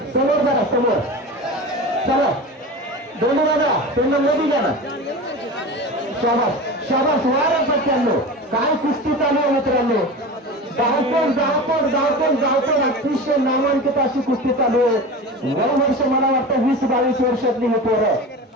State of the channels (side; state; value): both; normal; correlation 0.30